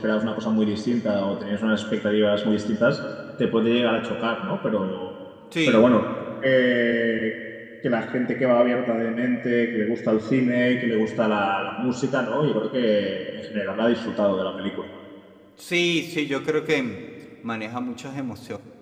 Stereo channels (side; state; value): both; identical; correlation 1.00